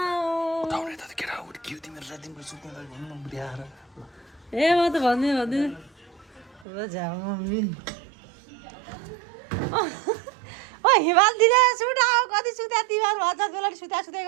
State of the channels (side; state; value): left; drops out; at 6.7 s